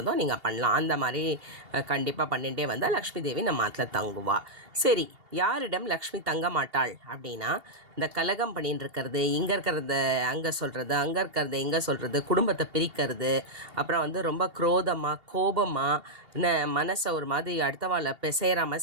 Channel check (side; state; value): left; late; 2.8 ms